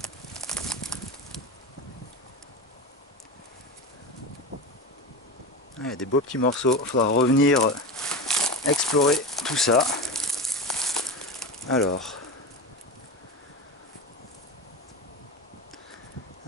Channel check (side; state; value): both; normal; correlation 0.25